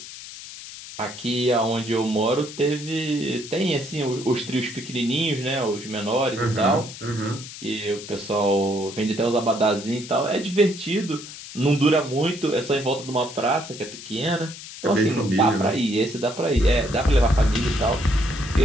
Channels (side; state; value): left; noise; hiss, 13 dB below the sound